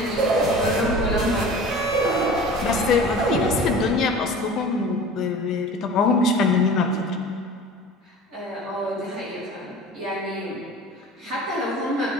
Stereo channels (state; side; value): normal; both; correlation 0.39